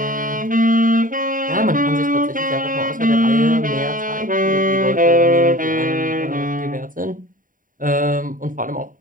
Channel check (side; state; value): left; late; 0.39 ms